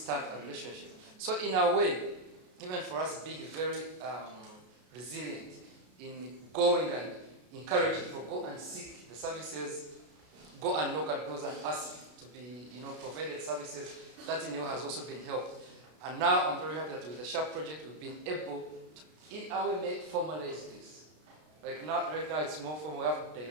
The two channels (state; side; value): late; left; 33 ms